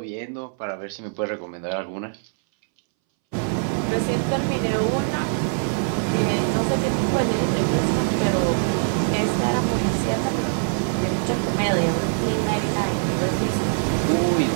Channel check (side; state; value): left; silent; 63 dB below the other